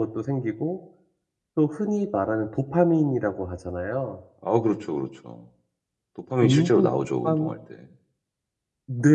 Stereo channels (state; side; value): identical; both; correlation 1.00